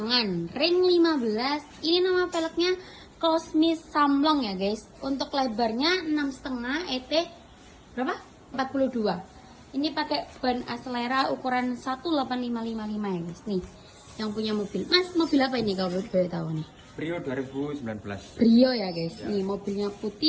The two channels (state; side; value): identical; both; correlation 1.00